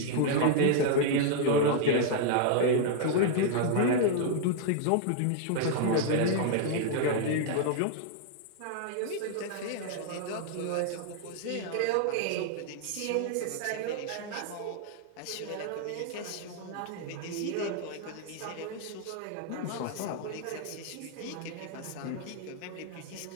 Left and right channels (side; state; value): both; different; correlation 0.00